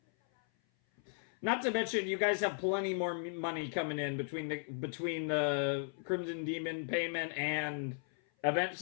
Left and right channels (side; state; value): right; silent; 54 dB below the other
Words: Not to mention, you guys have plenty more money coming in between the Crimson Demon payment and